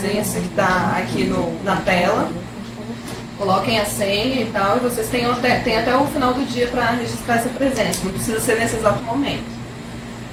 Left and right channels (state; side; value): identical; both; correlation 1.00